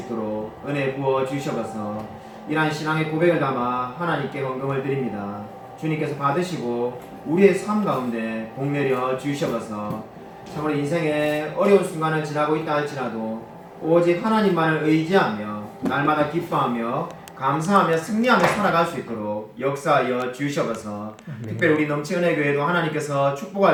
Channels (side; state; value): both; identical; correlation 1.00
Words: 은혜 부어 주셔서 이러한 신앙의 고백을 담아 하나님께 헌금을 드립니다. 주님께서 받으시고 우리의 삶 가운데 복내려 주셔서 참으로 인생의 어려운 순간을 지나고 있다 할지라도 오직 하나님만을 의지하며 날마다 기뻐하며 감사하며 승리하며 살아갈 수 있도록 역사하여 주셔서 특별히 우리 넘치 은혜교회도 하나님께서